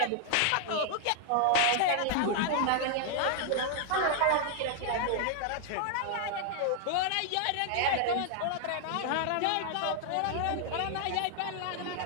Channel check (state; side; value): different; both; correlation 0.00